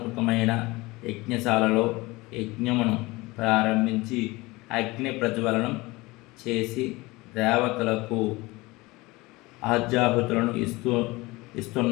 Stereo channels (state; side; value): quieter; right; 22.0 dB